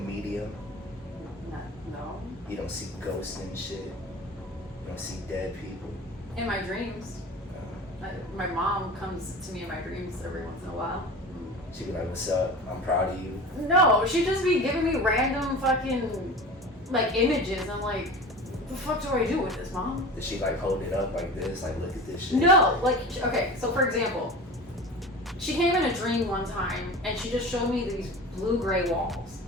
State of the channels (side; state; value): both; normal; correlation 0.34